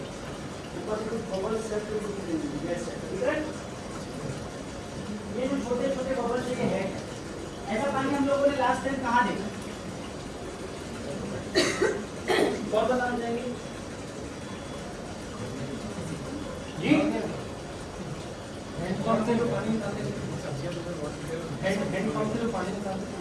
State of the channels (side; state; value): both; identical; correlation 1.00